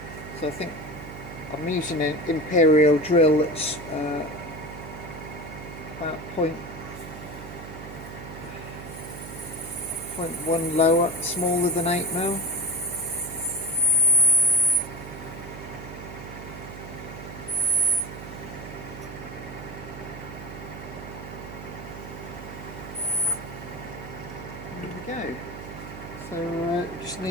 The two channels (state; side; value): noise; right; hum, 11 dB below the sound